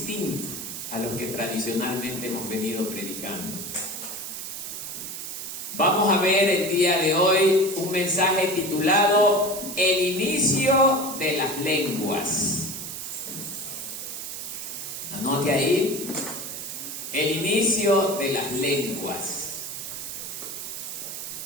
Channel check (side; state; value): right; noise; hiss, 7 dB below the sound